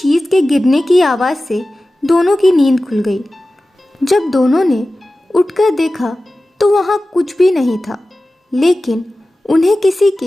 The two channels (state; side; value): normal; both; correlation 0.96